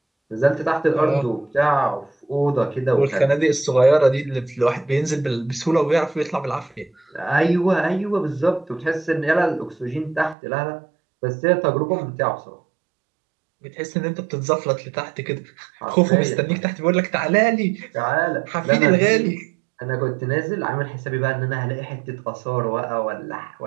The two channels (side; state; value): left; drops out; at 10.4 s